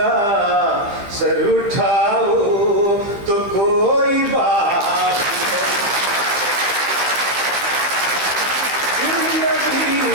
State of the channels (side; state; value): left; late; 15 ms